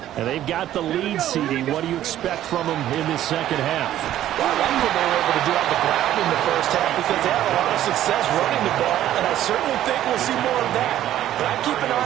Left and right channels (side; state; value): left; quieter; 12.5 dB